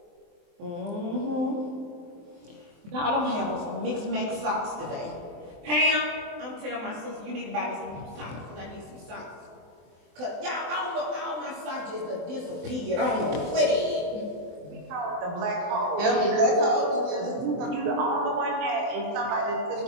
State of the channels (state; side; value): late; left; 23 ms